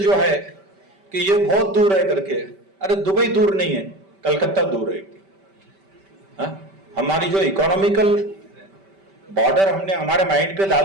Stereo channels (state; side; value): late; left; 5.1 ms